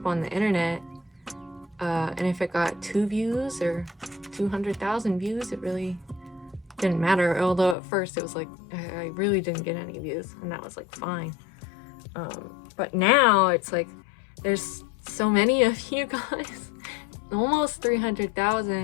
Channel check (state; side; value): drops out; right; at 7.8 s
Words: on the internet. And if it got 2 views or 200,000 views, it really didn't matter. Although at first it was like, I really didn't get any views, and that was like fine. But now it's like, there's so many of you guys, almost